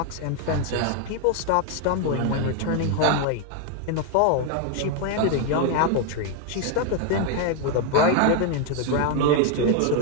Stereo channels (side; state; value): both; different; correlation 0.01